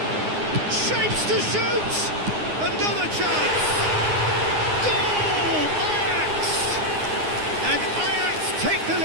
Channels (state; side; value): late; left; 9.7 ms